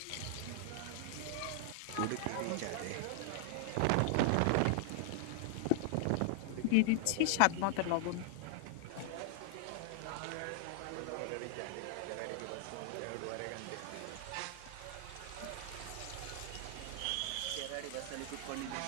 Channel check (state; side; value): different; both; correlation 0.00